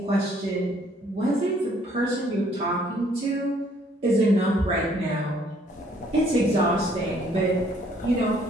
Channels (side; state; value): both; normal; correlation 0.63